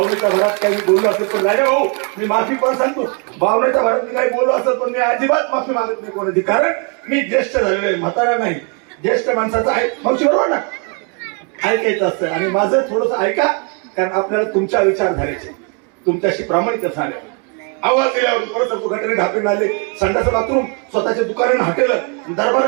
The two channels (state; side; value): quieter; left; 35.5 dB